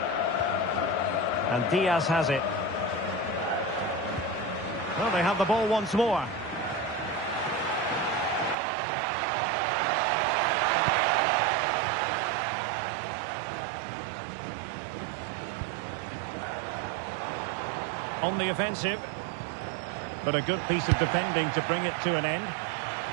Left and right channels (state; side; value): drops out; left; at 8.6 s